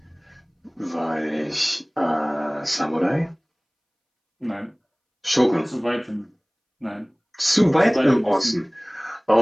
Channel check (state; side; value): identical; both; correlation 1.00